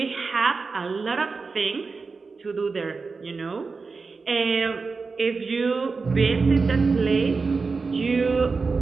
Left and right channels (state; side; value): quieter; left; 4.4 dB